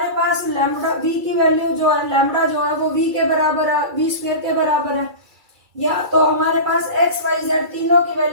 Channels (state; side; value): late; left; 2.3 ms